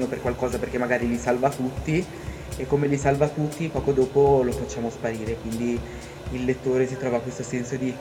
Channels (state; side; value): identical; both; correlation 1.00